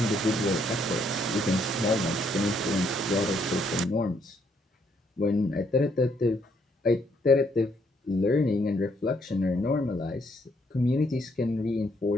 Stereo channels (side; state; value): both; normal; correlation 0.71